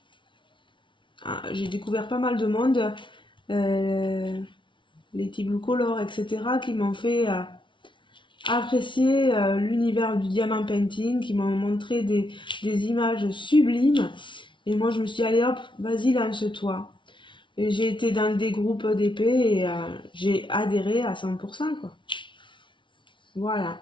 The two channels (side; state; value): right; late; 0.24 ms